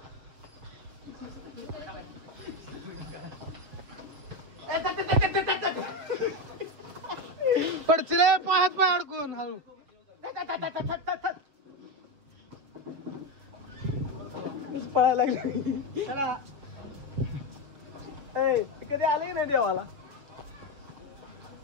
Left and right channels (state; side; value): late; left; 7.0 ms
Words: पडचिले पायात पाय अडकून हळू पळायला लागली कधी आले नाही देवाला